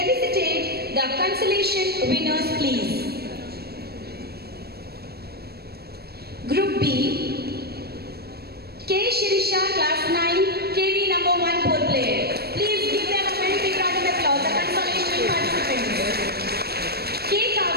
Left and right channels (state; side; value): late; left; 0.46 ms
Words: the consolation winners, please. Group B, K. Shirisha, Class 9, KV number 1 pole player. Please give them a very big round of applause, the consolation participants. K.